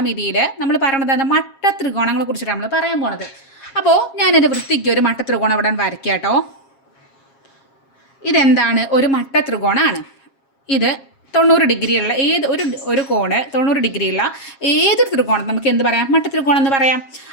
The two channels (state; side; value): late; right; 7.4 ms